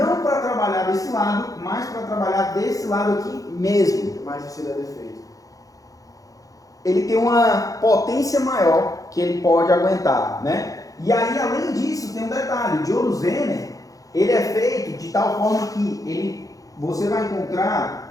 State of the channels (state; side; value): late; right; 0.17 ms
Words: para trabalhar desse lado, mas para trabalhar desse lado aqui mesmo. Mais difícil é defeito. Ele tem uma potência maior que ele pode aguentar, né? E aí, além disso, tem um detalhe: o diodo Zener, ele é feito de tal forma que você vai